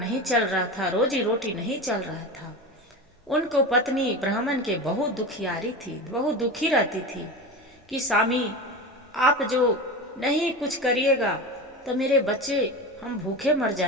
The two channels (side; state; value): both; normal; correlation 0.26